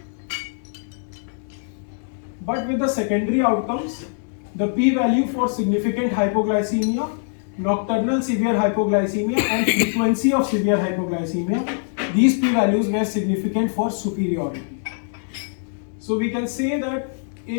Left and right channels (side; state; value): right; silent; digital silence